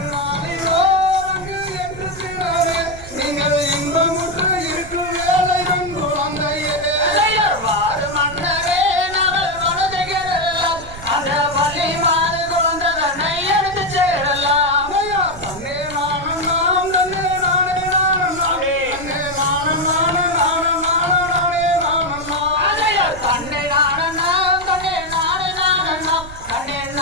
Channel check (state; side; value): noise; right; rumble, 15 dB below the sound